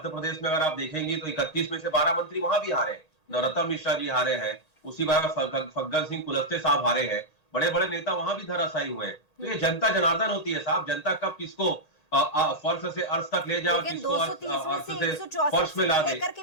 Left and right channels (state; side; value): late; right; 1.8 ms